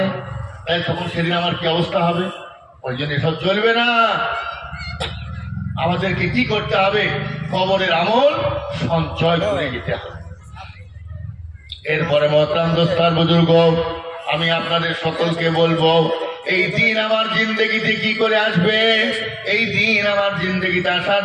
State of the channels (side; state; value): both; identical; correlation 1.00